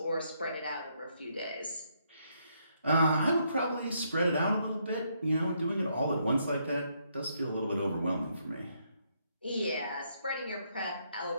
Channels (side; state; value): both; inverted; correlation -0.75